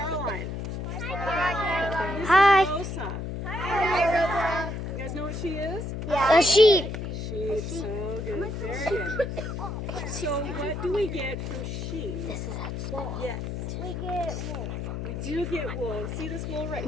Hi. This is Rosa. Hi. You guys know what she is? A sheep. Sheep. So good. Very good. So what do we get from sheep? This is Yes. We get wool. We do get wool. See this wool right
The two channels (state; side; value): noise; left; hum, 5 dB below the sound